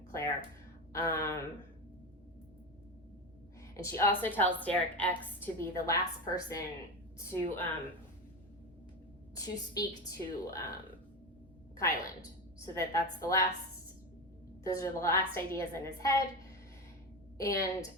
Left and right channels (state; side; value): normal; both; correlation 0.20